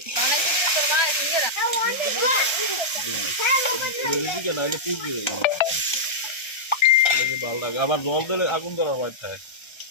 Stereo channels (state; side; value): late; right; 1.3 ms